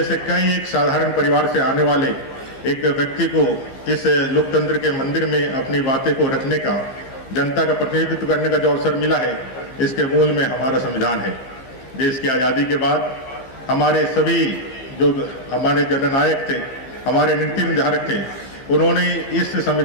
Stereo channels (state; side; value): late; right; 15 ms